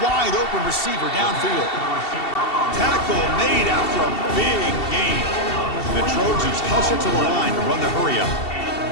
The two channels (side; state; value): right; late; 2.7 ms